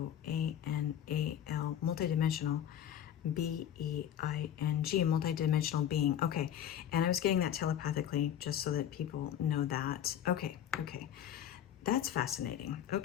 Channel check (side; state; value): right; quieter; 10.1 dB